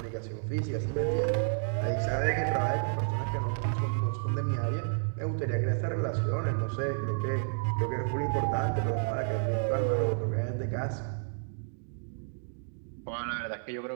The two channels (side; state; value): left; silent; digital silence